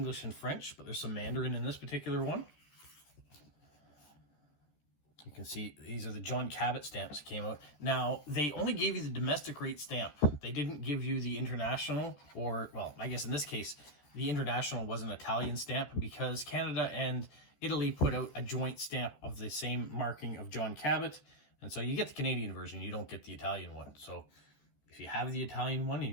and French, but there's some Mandarin in this particular one. You can see these are the John Cabot stamps that came out. Now, they only gave you the domestic rate stamp. They didn't give you the international, or, well, I guess in this case, the international was an Italian stamp because Canada and Italy put out a joint stamp of the same marking of John Cabot. And so you get the Canadian version, you don't get the Italian one. So if you have the Italian one and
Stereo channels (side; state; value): right; late; 14 ms